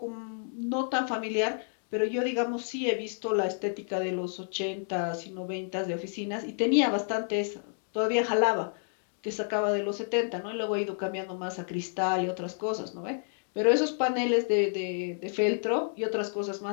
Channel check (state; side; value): silent; right; digital silence